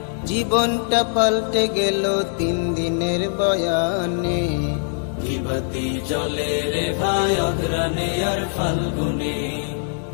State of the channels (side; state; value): right; silent; digital silence